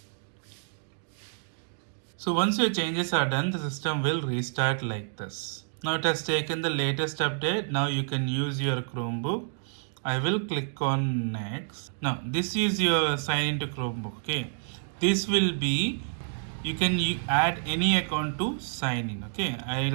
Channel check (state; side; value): silent; left; digital silence